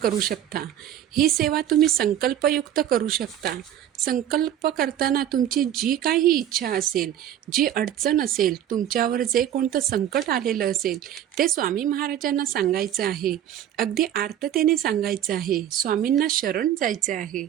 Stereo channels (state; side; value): quieter; left; 10.9 dB